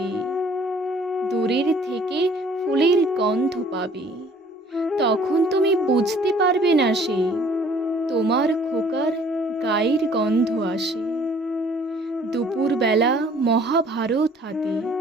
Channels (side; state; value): both; normal; correlation 0.56